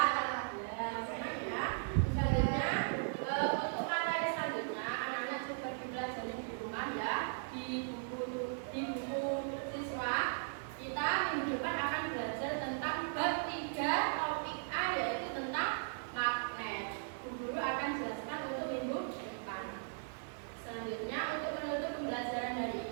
Di buku siswa kita minggu depan akan belajar tentang bab 3 topik A, yaitu tentang magnet. Guru akan jelaskan untuk minggu depan. Selanjutnya untuk menutup pembelajaran hari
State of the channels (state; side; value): silent; left; digital silence